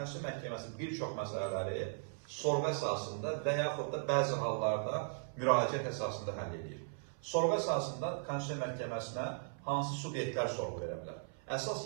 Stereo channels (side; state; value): left; silent; 53 dB below the other